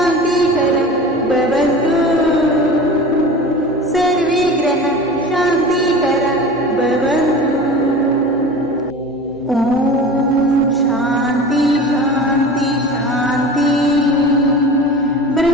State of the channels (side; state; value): right; noise; hum, 27 dB below the sound